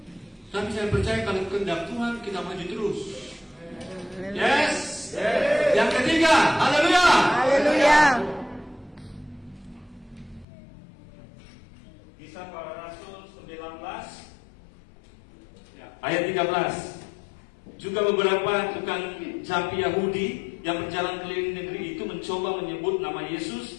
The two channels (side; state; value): right; drops out; at 10.5 s